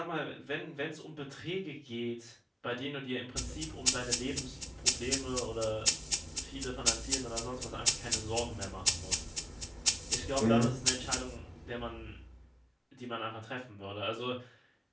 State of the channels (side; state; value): both; identical; correlation 1.00